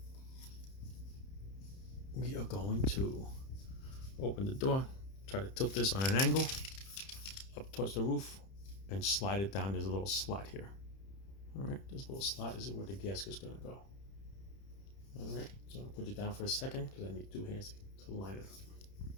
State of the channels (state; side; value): late; right; 31 ms